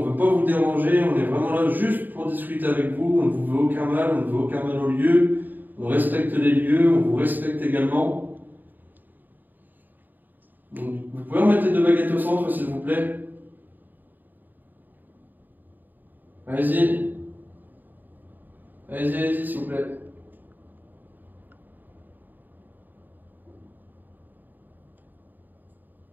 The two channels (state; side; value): late; left; 0.088 ms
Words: ne veut pas vous déranger, on est vraiment là juste pour discuter avec vous, on ne vous veut aucun mal, on ne veut aucun mal au lieu, on respecte les lieux, on vous respecte également. Donc, vous pouvez remettre les deux baguettes au centre, s'il vous plaît. Allez-y. Allez-y, s'il vous plaît.